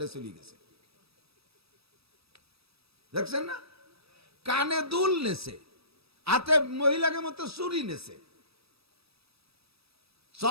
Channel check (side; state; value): left; late; 0.78 ms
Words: চলে গেছে। দেখছেন না? কানে দুল নেছে, হাতে মহিলাকে মতো চুরি নেছে,